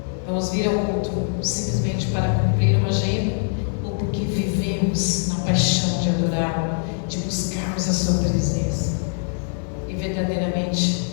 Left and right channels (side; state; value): right; silent; 64 dB below the other